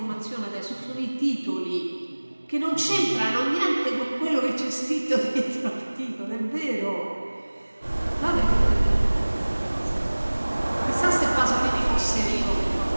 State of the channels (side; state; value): both; inverted; correlation -1.00